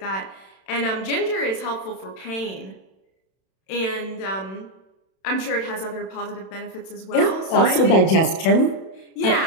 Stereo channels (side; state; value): right; late; 31 ms